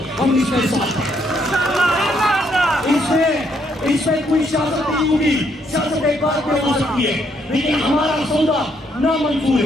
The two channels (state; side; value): normal; both; correlation 0.72